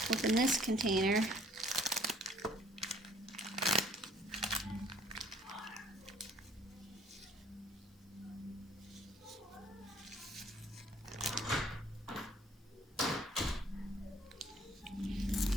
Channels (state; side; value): normal; both; correlation 0.58